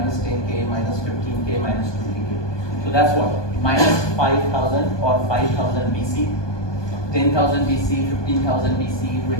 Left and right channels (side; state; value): right; late; 1.2 ms